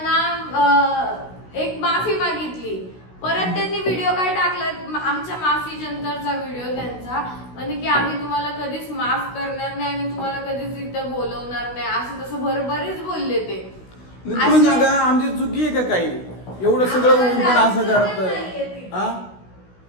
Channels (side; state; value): right; late; 16 ms